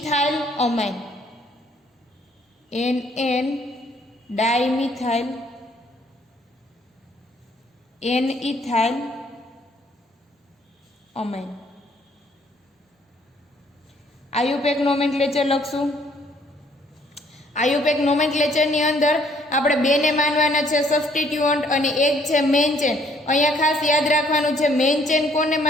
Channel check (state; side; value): normal; both; correlation 0.64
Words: amine, NN dimethyl N ethyl amine. IUPAC nomenclature લખશું. આયુપેક નોમેનક્લેચરની અંદર આપણે બેને માનવાના છે સબસ્ટિટ્યુઅન્ટ અને એક છે મેઇન ચેન. અહીંયા ખાસ યાદ રાખવાનું છે મેઇન ચેન કોને